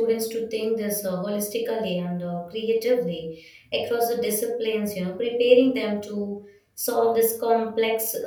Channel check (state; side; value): identical; both; correlation 1.00